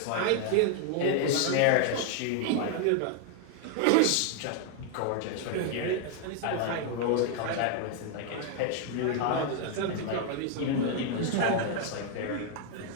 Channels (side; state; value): both; different; correlation 0.00